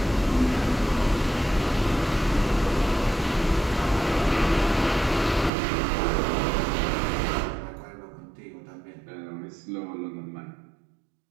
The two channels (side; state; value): left; drops out; at 5.5 s